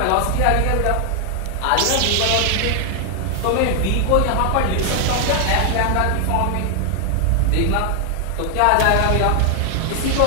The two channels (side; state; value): both; different; correlation 0.00